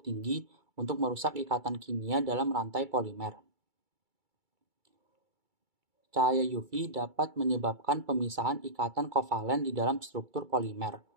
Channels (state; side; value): late; left; 2.3 ms